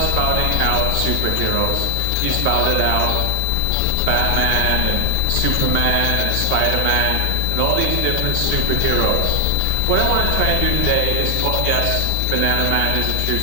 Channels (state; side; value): different; both; correlation 0.00